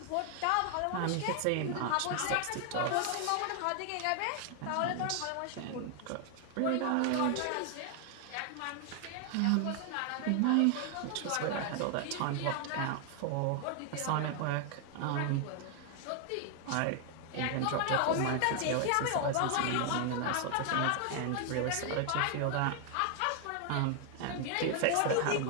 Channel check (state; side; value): different; both; correlation 0.00